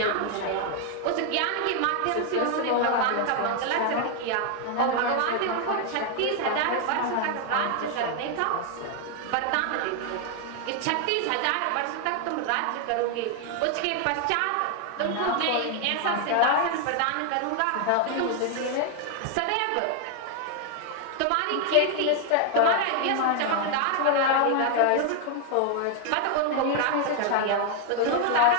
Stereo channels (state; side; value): different; both; correlation 0.00